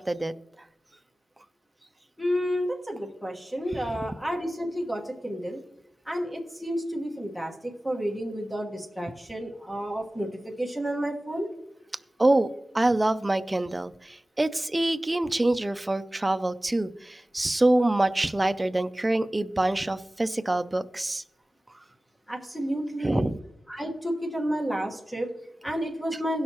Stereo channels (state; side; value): normal; both; correlation 0.97